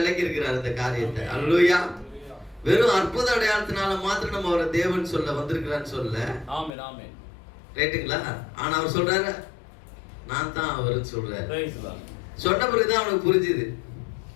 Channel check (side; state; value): right; drops out; at 6.7 s